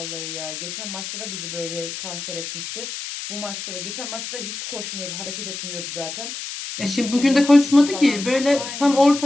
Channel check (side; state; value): left; noise; hiss, 7 dB below the sound